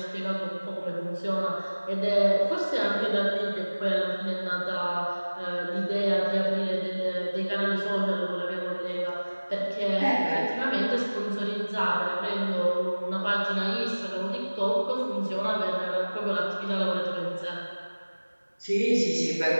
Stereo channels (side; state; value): both; inverted; correlation -1.00